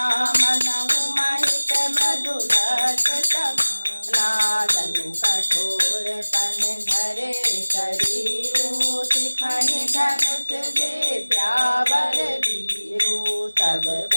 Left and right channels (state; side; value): inverted; both; correlation -1.00